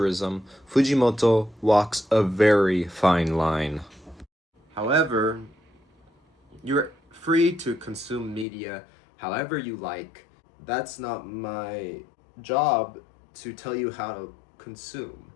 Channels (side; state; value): right; drops out; at 8.5 s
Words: Fujimoto walks a very fine line. However, you're free to consume media however you like. That's not my job to tell you how to consume.